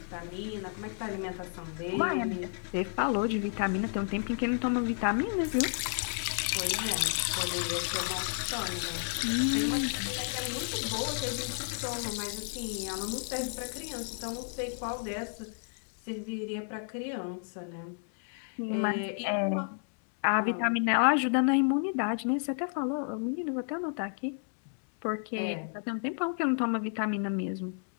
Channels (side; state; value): right; silent; 56 dB below the other